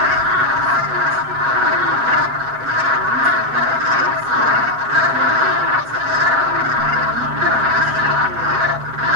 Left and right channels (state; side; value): late; left; 8.1 ms